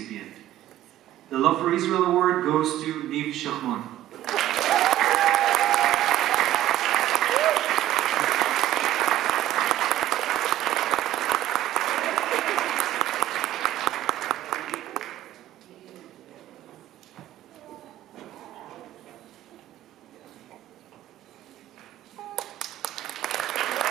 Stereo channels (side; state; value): left; quieter; 13.4 dB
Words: The Love for Israel Award goes to Niv Shachmon.